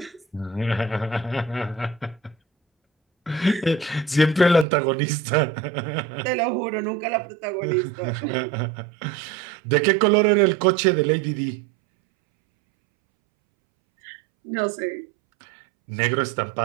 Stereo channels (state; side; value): drops out; left; at 4.7 s